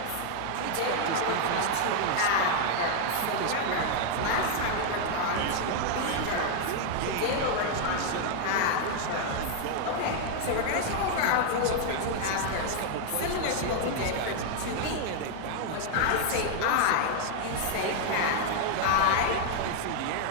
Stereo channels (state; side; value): different; both; correlation 0.00